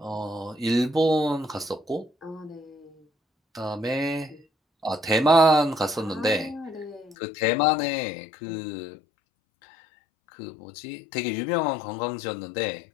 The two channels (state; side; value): drops out; right; at 7.2 s